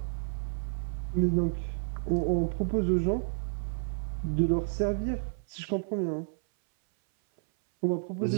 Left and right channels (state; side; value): silent; left; 57 dB below the other